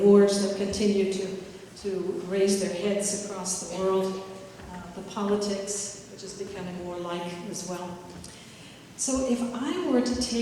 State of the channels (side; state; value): both; identical; correlation 1.00